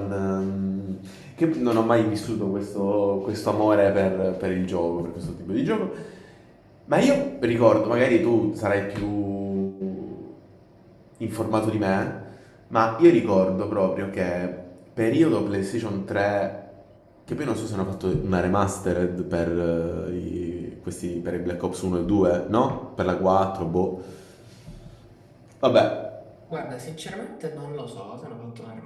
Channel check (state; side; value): identical; both; correlation 1.00